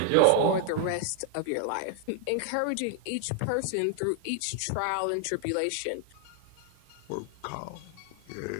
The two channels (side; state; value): both; different; correlation 0.00